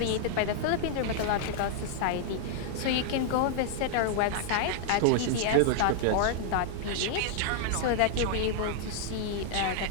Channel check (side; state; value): both; different; correlation -0.01